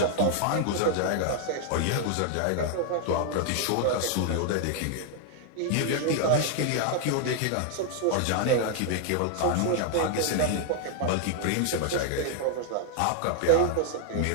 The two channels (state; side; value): different; both; correlation 0.00